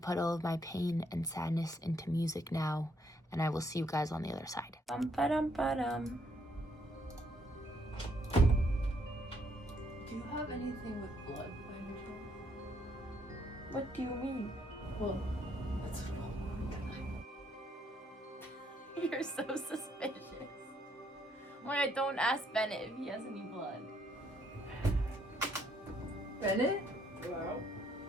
all of my pain and sadness into music now, and I will see you guys on the other side. Bum-ba-dum-ba-dum. Do you have anything with blood by any chance? What do you mean? Well, that's what You're so suspicious. Wait, don't ask Bennett if he has any blood. Bennett? Hello?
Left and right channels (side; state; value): both; normal; correlation 0.71